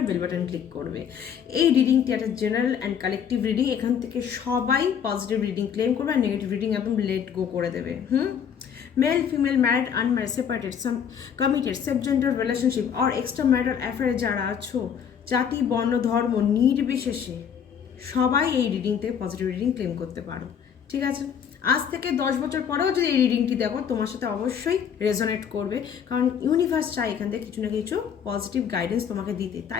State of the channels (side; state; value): right; quieter; 8.0 dB